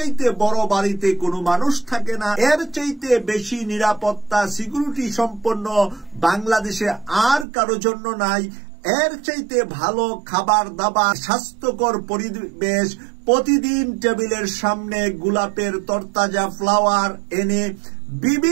বড় বাড়িতে কোনো মানুষ থাকে না, এর চাইতে বেশি নিরাপত্তা সিকিউরিটি সম্পন্ন বাংলাদেশে আর কারো জন্য নাই, এর চাইতে ভালো খাবার দাবার, স্বাস্থ্যকর পরিবেশ, প্রতিদিন টেবিলের সামনে গোলাপের তরতাজা ফ্লাওয়ার এনে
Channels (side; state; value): left; drops out; at 7.5 s